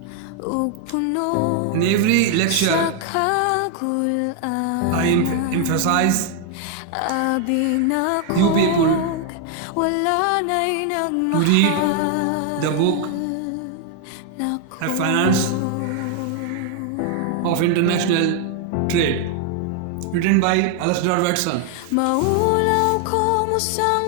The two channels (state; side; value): different; both; correlation 0.00